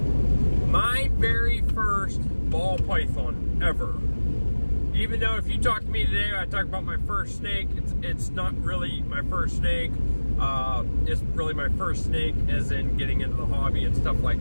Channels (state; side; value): inverted; both; correlation -1.00